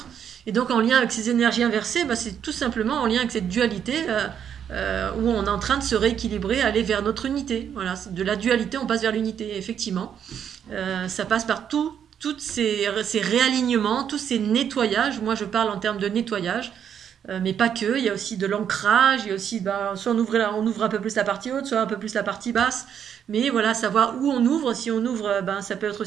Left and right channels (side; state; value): left; quieter; 8.6 dB